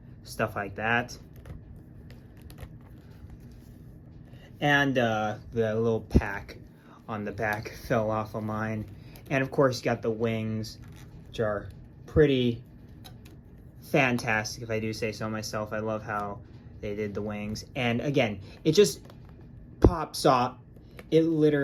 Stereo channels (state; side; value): identical; both; correlation 1.00